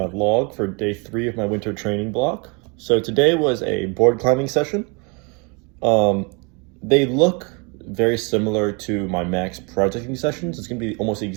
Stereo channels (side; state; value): left; quieter; 31.7 dB